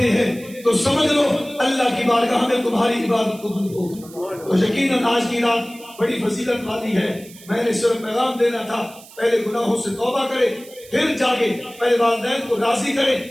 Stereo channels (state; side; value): noise; right; hiss, 21 dB below the sound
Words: ہیں تو سمجھ لو اللہ کی بارگاہ میں تمہاری عبادت قبول ہوگی تو یقیناً آج کی رات بڑی فضیلت والی ہے میں نے صرف پیغام دینا تھا پہلے گناہوں سے توبہ کرے پھر جاگے پہلے والدین کو راضی کرے